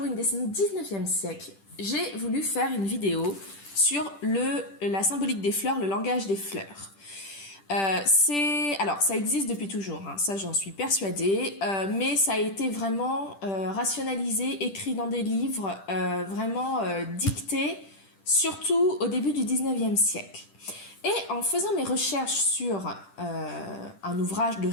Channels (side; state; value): right; late; 10 ms